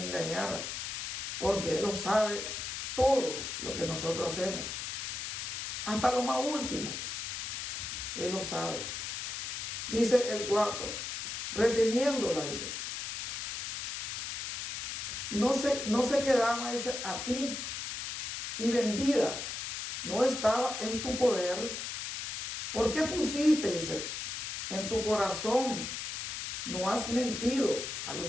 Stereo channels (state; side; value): noise; left; hiss, 4 dB below the sound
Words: porque Él lo sabe todo lo que nosotros hacemos. Hasta lo más último. Él lo sabe. Dice el 4. Reteniéndola, dice. No se quedaba, dice, a ti. Y vendida. No estaba en tu poder. ¿Por qué pusiste, dice, en tu corazón? No has mentido a